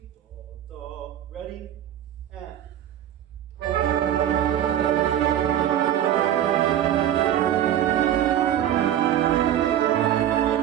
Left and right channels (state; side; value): quieter; left; 11.1 dB